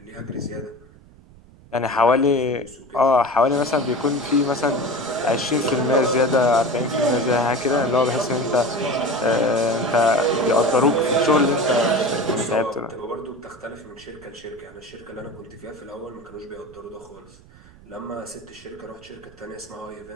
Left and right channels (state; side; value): noise; right; rumble, 24 dB below the sound